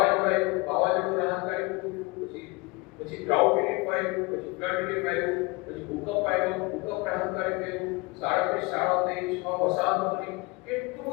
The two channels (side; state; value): right; quieter; 25.4 dB